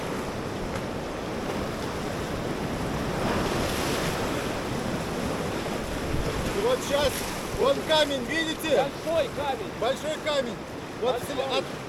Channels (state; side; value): identical; both; correlation 1.00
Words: И вот сейчас. Вон камень, видите? Большой камень. Большой камень. Вот